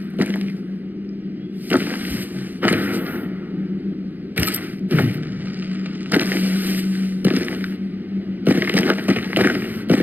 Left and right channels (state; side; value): late; left; 0.085 ms